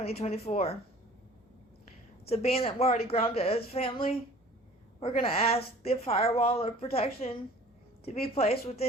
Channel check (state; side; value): normal; both; correlation 0.48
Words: So being that we're already grounded as family, we're going to ask the firewall of protection to be placed